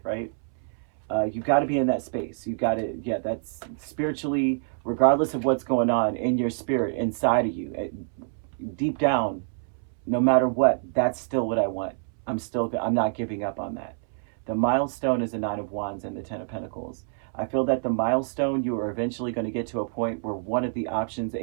right? You've got to be in that space. You've got to, yeah, that's spiritually, regardless of what's going on in your spirit, inside of you, deep down, no matter what, that's still what I want. I'm not giving up on that. The milestone is the Nine of Wands and the Ten of Pentacles. I feel that the milestone, you are eventually going to get to a point where one of the options,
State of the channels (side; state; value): left; silent; 60 dB below the other